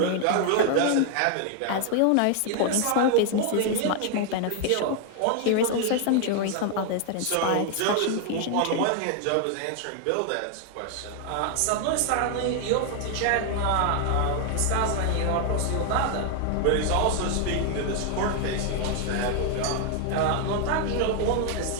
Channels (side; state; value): both; different; correlation 0.00